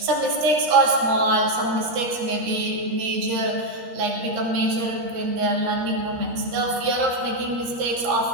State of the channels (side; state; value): left; late; 13 ms